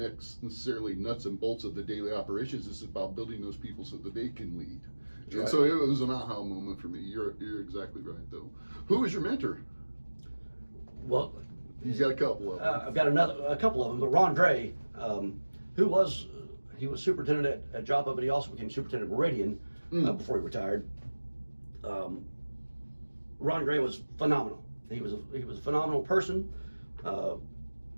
nuts and bolts of the daily operations. It's about building those people so that they can lead. And Right. so it was an aha moment for me. You're exactly right, though. Who was your mentor? Well, You got a couple of them. I've got a couple of them, but Ron Dre, he was superintendent at Joppa, but he also became superintendent of Meridian before he retired. Ron Dre was phenomenal. He was a phenomenal person.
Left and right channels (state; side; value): inverted; both; correlation -1.00